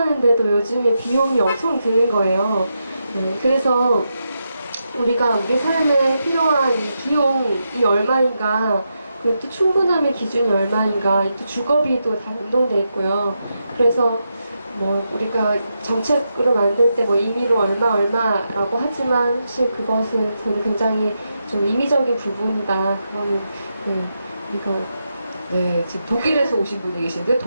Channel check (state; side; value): inverted; both; correlation -0.85